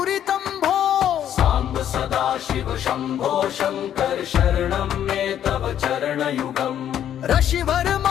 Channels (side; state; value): right; quieter; 10.3 dB